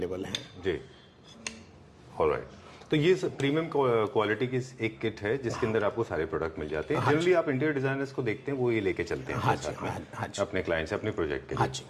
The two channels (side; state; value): both; identical; correlation 1.00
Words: हैं जी, ऑलराइट। तो ये प्रीमियम क्वालिटी की एक किट है जिसके अंदर आपको सारे प्रोडक्ट मिल जाते हैं। जनरली आप इंटीरियर डिजाइनर्स को देखते हैं वो ये लेके चलते हैं अपने साथ में अपने क्लाइंट से अपने प्रोजेक्ट के लिए।